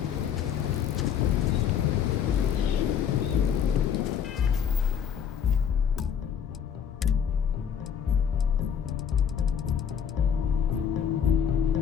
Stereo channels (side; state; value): right; quieter; 8.0 dB